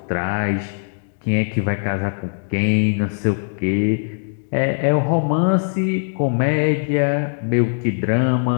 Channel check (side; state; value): right; silent; 65 dB below the other